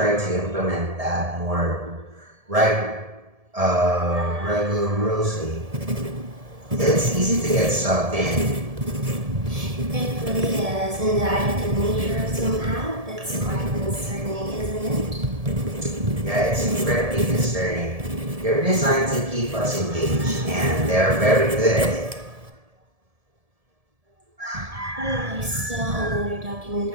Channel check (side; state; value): left; late; 1.7 ms